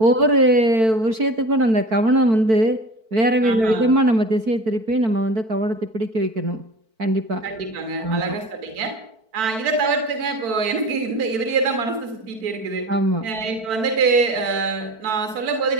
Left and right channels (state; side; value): late; left; 4.5 ms